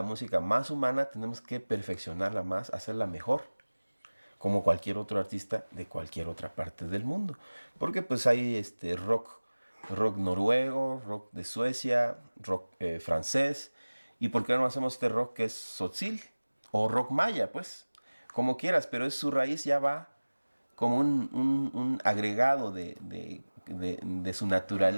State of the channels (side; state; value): both; inverted; correlation -1.00